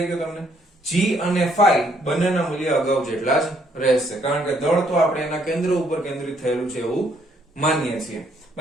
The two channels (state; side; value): normal; both; correlation 0.69